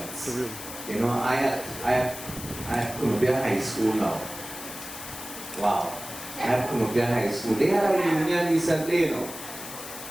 You know, I had Columbia High School now. Wow. I had Columbia High School. They had a reunion recently, you know.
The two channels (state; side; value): noise; left; hiss, 11 dB below the sound